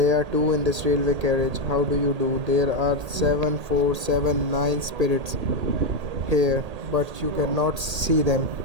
are two in this railway carriage. How do you do? There are 7, 4, 7, 9 spirits here, but you cannot see them.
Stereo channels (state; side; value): late; left; 1.8 ms